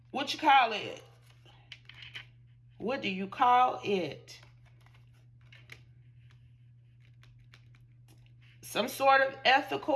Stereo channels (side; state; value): both; identical; correlation 1.00